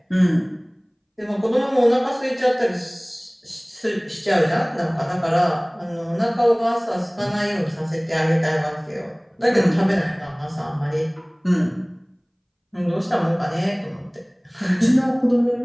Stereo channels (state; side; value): identical; both; correlation 1.00